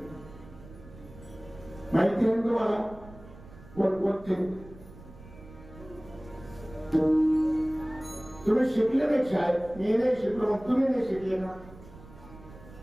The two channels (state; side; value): noise; right; rumble, 19 dB below the sound